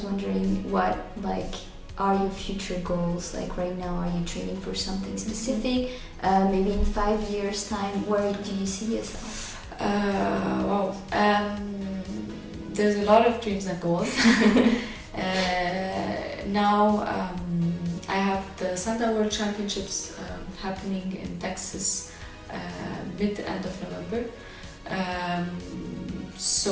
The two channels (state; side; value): identical; both; correlation 1.00